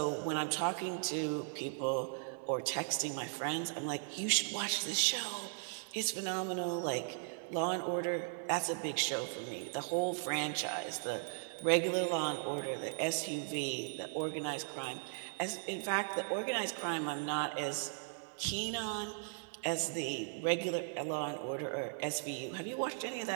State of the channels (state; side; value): silent; left; digital silence